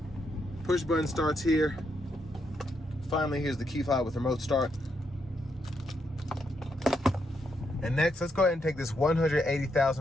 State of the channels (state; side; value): normal; both; correlation 0.79